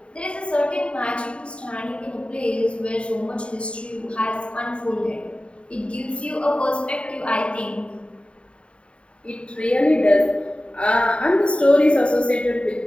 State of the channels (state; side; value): late; right; 0.058 ms